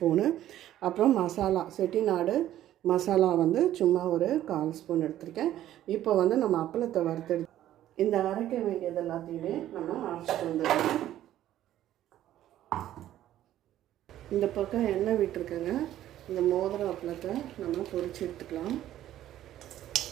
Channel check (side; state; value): left; quieter; 12.7 dB